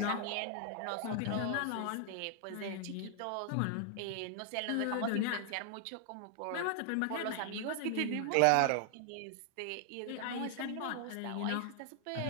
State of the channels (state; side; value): different; both; correlation 0.00